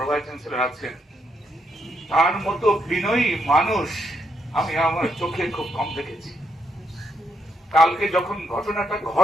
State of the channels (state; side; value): normal; both; correlation 0.77